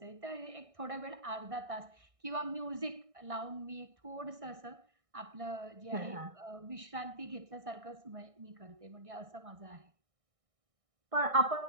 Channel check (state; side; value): late; left; 1.6 ms